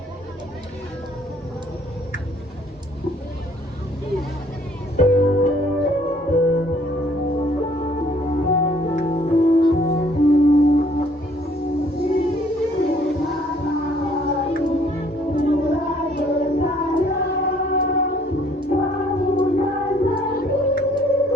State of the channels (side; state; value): both; normal; correlation 0.61